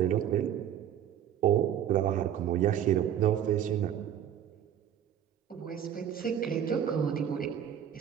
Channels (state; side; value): quieter; left; 9.9 dB